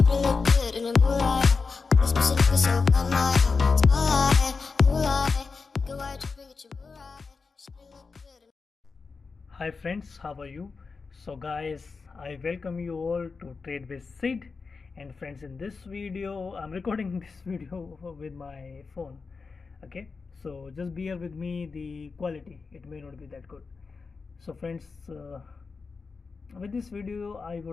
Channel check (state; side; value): quieter; right; 4.6 dB